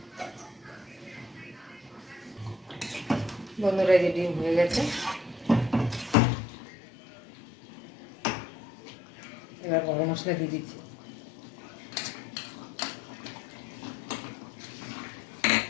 বন্ধুরা, যে ডিম হয়ে গেছে, এবার গরম মশলা দিয়ে দিচ্ছি।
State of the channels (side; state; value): right; drops out; at 6.2 s